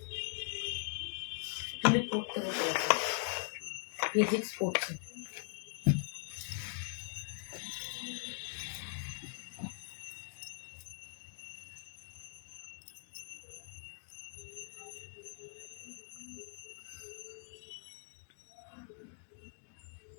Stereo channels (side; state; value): right; silent; digital silence